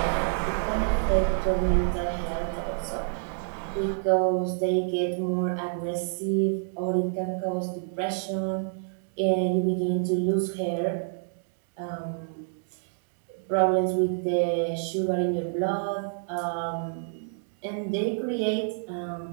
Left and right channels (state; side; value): silent; left; digital silence